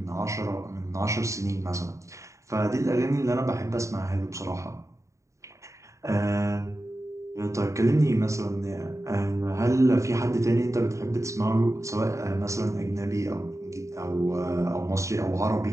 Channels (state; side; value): late; left; 0.15 ms